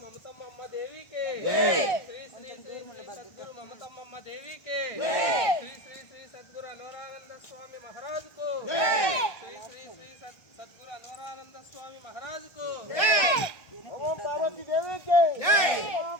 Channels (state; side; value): late; right; 1.3 ms